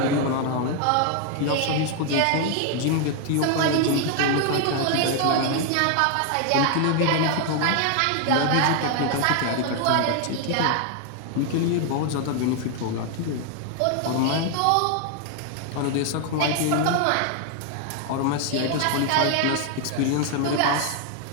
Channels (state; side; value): different; both; correlation 0.01